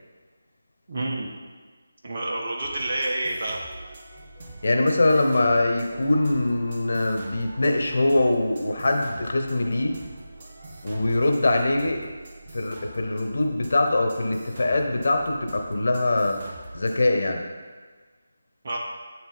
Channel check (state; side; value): inverted; both; correlation -0.94